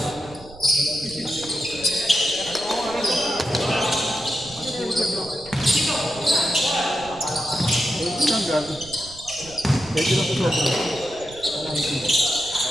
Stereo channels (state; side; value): noise; right; rumble, 19 dB below the sound